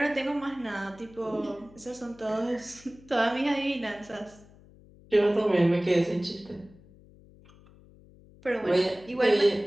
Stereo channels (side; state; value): left; noise; hum, 24 dB below the sound